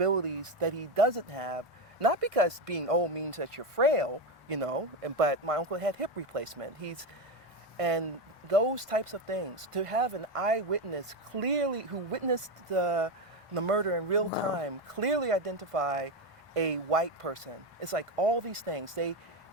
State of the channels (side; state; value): both; normal; correlation 0.14